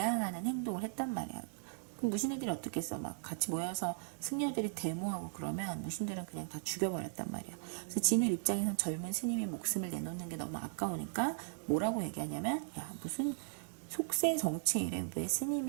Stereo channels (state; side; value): silent; left; digital silence